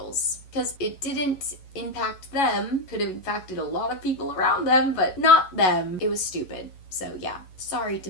Because it didn't impact them. Could have impacted a lot of people around them, but not them. It was stupid. So yeah. Sorry,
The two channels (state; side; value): late; right; 11 ms